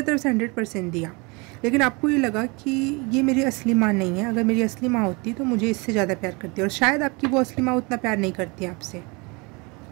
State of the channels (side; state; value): left; quieter; 28.1 dB